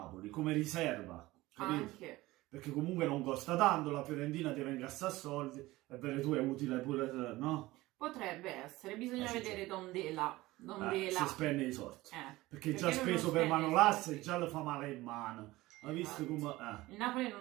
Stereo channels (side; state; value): left; quieter; 18.7 dB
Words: come riserva. Capito? Anche. Perché comunque non costa tanto, la Fiorentina deve incassare soldi e Beretù è utile pure, no? Potrebbe essere, bisogna vedere Dondela. Se spende i soldi. Perché già lui non speso per spende i Manolas soldi. e già lo fa male in mano. Ha visto come... Il Napoli